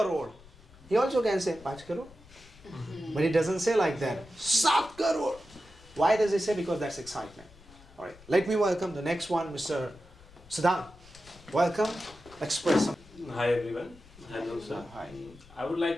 He also can say 5 crore. But he doesn't say like that. 7 crore. Why does he say? Because that's excitement. Alright, let me welcome the next one, Mr. Siddhant. Welcome. Express some. Hi everyone. Hello sir. Hi. I would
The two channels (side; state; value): left; noise; rumble, 23 dB below the sound